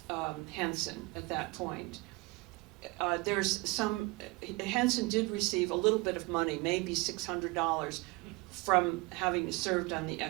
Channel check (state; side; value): quieter; left; 24.6 dB